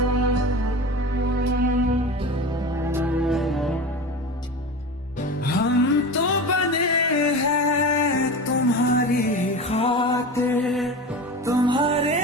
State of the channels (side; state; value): both; normal; correlation 0.29